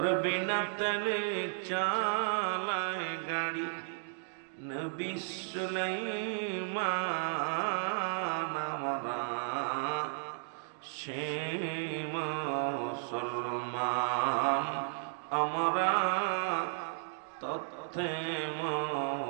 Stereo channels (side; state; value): left; silent; digital silence